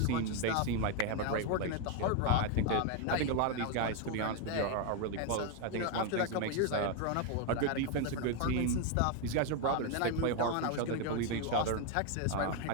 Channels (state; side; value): different; both; correlation 0.01